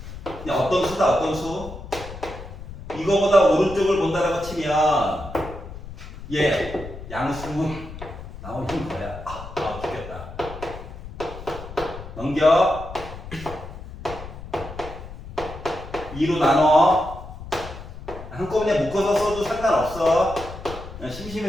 그냥 어떤 수다, 어떤 수? 이거보다 오른쪽을 본다라고 치면 얘 양수 나오는 거야. 죽겠다. 넘겨. 2로 나눠. 한꺼번에 묶어서 써도 상관없어. 그냥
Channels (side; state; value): left; noise; rumble, 12 dB below the sound